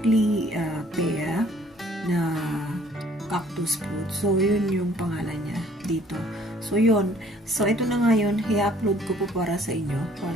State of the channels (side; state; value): both; normal; correlation 0.58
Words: pear na cactus fruit. So, yun yung pangalan niya dito. So, yun. So, ito na ngayon, i-upload ko po para sa inyo.